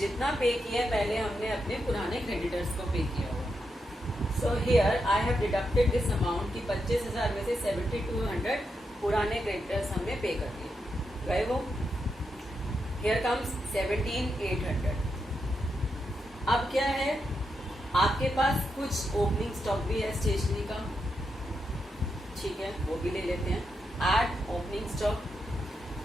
जितना पे किया पहले हमने अपने पुराने creditors को पे किया होगा। So here I have deducted this amount कि 25,000 में से 7,200 पुराने क्रेडिटर्स हमने पे कर दिए, गए वो। Here comes 17,800। अब क्या है, आपके पास कुछ ओपनिंग स्टॉक भी है स्टेशनरी का, ठीक है, वो भी ले लेते हैं। एड ओपनिंग स्टॉक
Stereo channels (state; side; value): normal; both; correlation 0.84